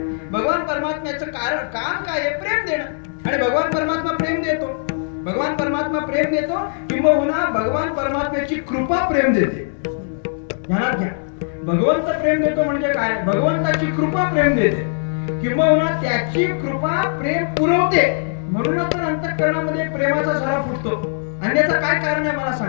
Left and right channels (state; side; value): silent; right; digital silence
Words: भगवान परमात्म्याचं कारण काम काय आहे, प्रेम देणं. आणि भगवान परमात्मा प्रेम देतो. भगवान परमात्मा प्रेम देतो किंबहुना भगवान परमात्म्याची कृपा प्रेम देते. ध्यानात घ्या, भगवंत प्रेम देतो म्हणजे काय, भगवंताची कृपा प्रेम देते किंबहुना त्याची कृपा प्रेम पुरवते. म्हणूनच तर अंतःकरणामध्ये प्रेमाचा झरा फुटतो. अन्यथा काय कारण आहे मला